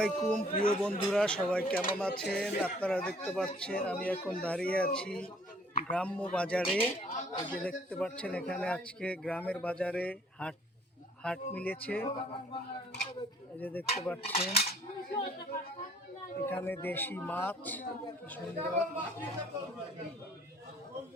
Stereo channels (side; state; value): both; normal; correlation 0.58